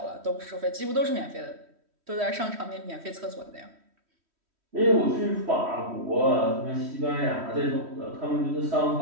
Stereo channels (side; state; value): left; late; 3.1 ms